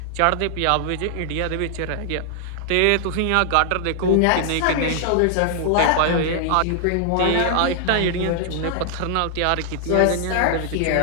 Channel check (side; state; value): both; different; correlation -0.01